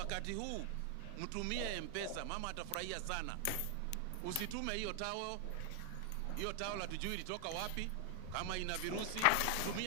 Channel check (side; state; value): both; different; correlation 0.00